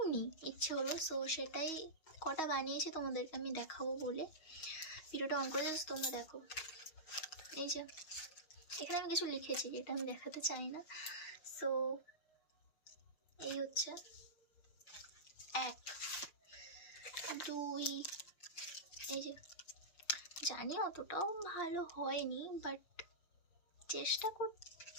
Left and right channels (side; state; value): right; late; 6.3 ms